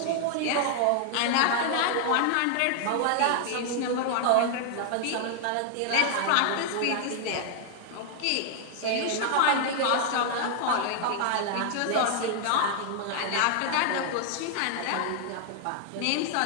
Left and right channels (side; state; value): both; different; correlation 0.00